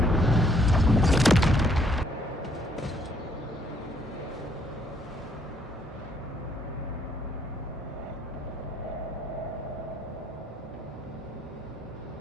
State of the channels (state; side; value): normal; both; correlation 0.67